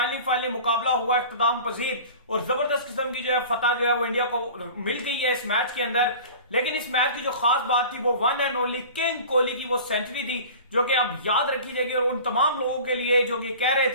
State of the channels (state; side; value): inverted; both; correlation -0.40